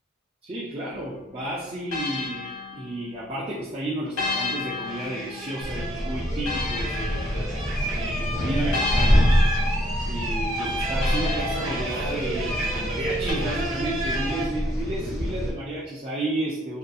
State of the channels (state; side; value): normal; both; correlation 0.68